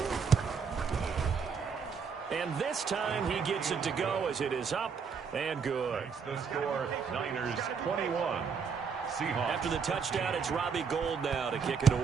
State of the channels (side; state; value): left; quieter; 5.9 dB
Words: And this time he gets it to go as it is up and good. Makes the score, Niners 21. Seahawks. After the touchdown, it's Robbie Gould now to kick it